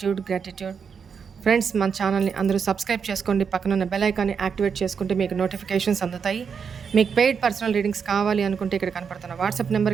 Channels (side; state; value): left; quieter; 6.4 dB